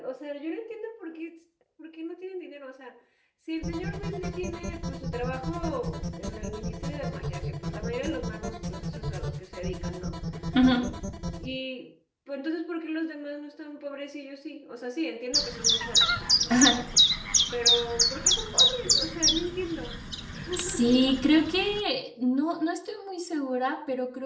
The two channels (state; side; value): identical; both; correlation 1.00